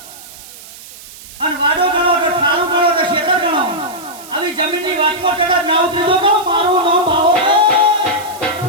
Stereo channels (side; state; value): right; noise; hiss, 18 dB below the sound